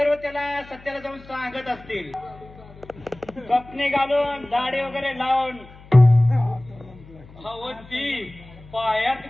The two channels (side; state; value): left; noise; hum, 21 dB below the sound